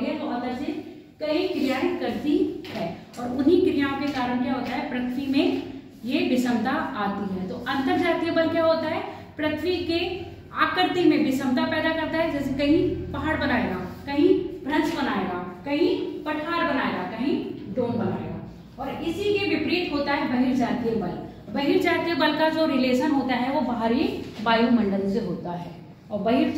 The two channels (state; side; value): identical; both; correlation 1.00